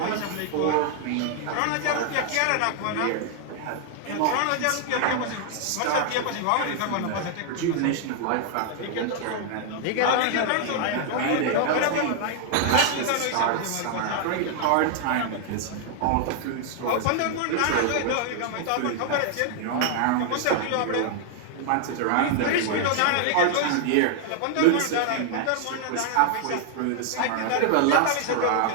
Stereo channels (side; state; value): both; different; correlation 0.00